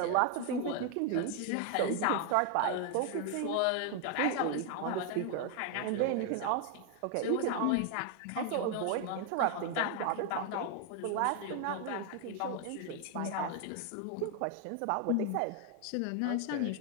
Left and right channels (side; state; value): both; different; correlation 0.01